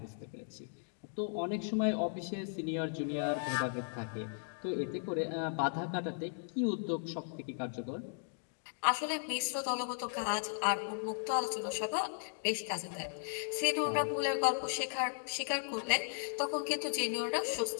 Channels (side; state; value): right; silent; digital silence